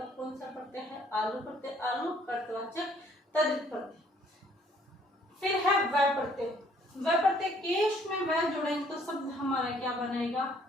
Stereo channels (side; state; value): both; normal; correlation 0.61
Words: कौन सा प्रत्यय है, आलू प्रत्यय। आलू कर्तवाचक तद्धित प्रत्यय। फिर है वह प्रत्यय। वह प्रत्यय केश में वह जोड़ेंगे तो शब्द हमारा क्या बनेगा,